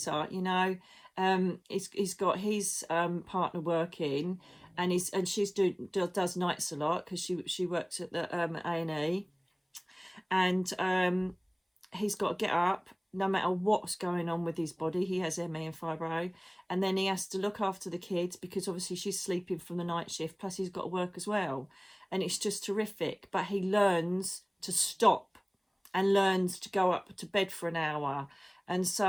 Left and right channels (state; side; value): identical; both; correlation 1.00